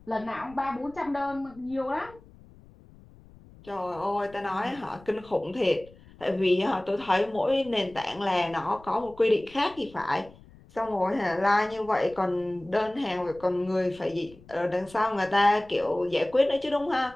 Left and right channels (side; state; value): left; noise; rumble, 23 dB below the sound